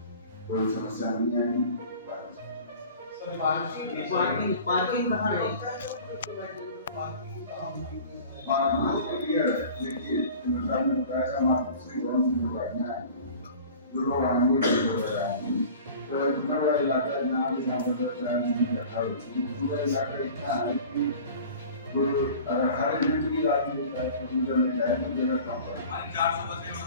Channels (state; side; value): inverted; both; correlation -0.42